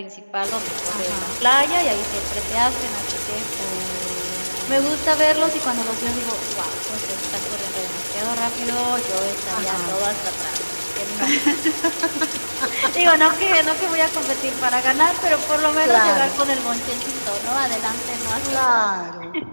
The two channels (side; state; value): both; inverted; correlation -1.00